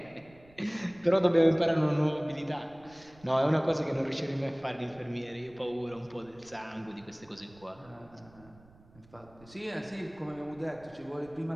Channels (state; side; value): noise; right; rumble, 26 dB below the sound